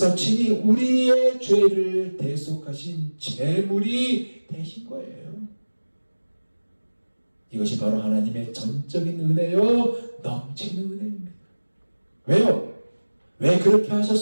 친히 우리의 죄를 대속하신 제물이 되신 거예요. 이것이 바로 하나님의 전적인 은혜요, 넘치는 은혜입니다. 왜요? 왜 그렇게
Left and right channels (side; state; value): both; inverted; correlation -1.00